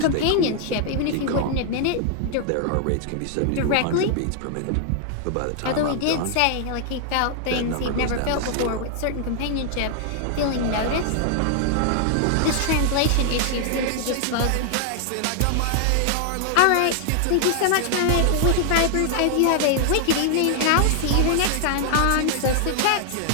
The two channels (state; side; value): different; both; correlation 0.00